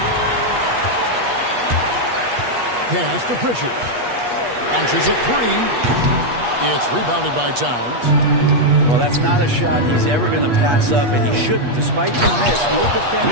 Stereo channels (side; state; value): left; late; 8.3 ms